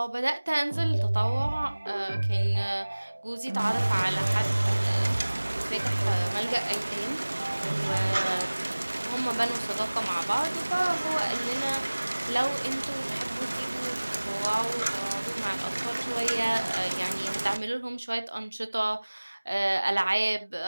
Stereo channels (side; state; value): both; inverted; correlation -1.00